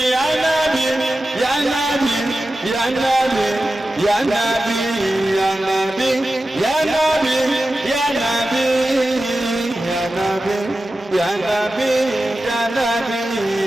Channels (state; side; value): normal; both; correlation 0.93